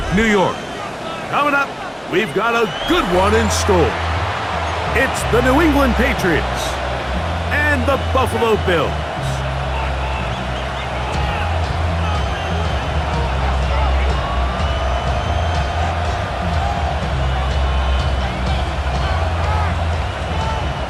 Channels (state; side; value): identical; both; correlation 1.00